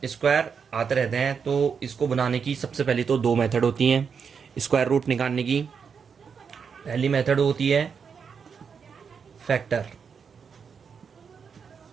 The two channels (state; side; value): quieter; left; 6.3 dB